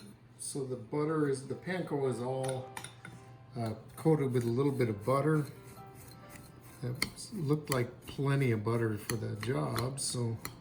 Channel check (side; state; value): both; identical; correlation 1.00